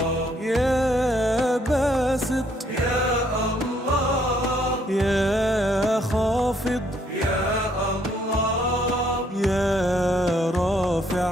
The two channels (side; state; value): both; normal; correlation 0.68